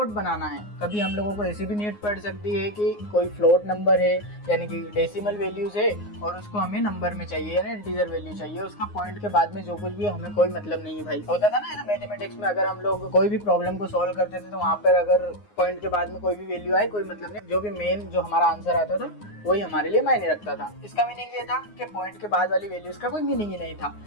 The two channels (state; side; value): late; right; 9.6 ms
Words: बनाना है। कभी हम लोगों को ऐसी भी नीड पड़ सकती है कि कोई फ्लोट नंबर है, यानी कि डेसिमल वैल्यूज है और उसको हमें नंबर में चाहिए, यानी इंटीजर वैल्यू चाहिए। उसका पॉइंट के बाद में जो कुछ भी हमें कोई मतलब नहीं है भाई। होता था ना मैथमेटिक्स में, अगर हम लोग कोई भी प्रॉब्लम को सॉल्व करते थे तो वहाँ पर अगर पॉइंट के बाद में कोई भी वैल्यू आए कोई मतलब नहीं, जो भी मेन जो हमारा आंसर आता था वही हमारे लिए मायने रखता था। इसका मीनिंग ये था कि पॉइंट के बाद वाली वैल्यूज का कोई मीनिंग ही नहीं था।